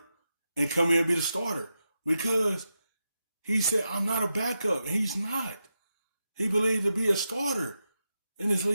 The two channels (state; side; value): inverted; both; correlation -0.88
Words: and come in and be the starter. Because he said, I'm not a backup. And he's not. He believed to be a starter in this